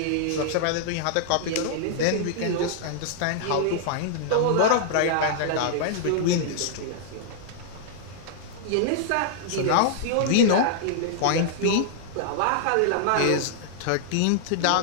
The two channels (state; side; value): different; both; correlation -0.01